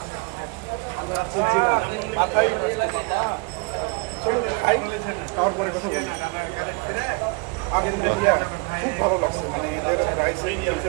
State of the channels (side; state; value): left; quieter; 30.6 dB